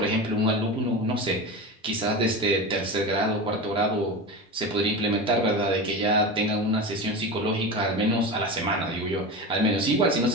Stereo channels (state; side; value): normal; both; correlation 0.25